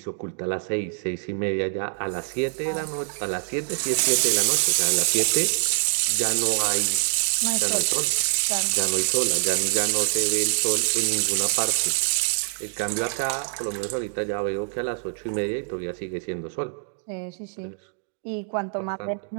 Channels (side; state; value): left; silent; digital silence